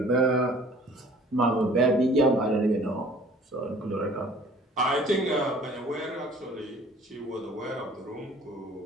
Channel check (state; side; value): normal; both; correlation 0.51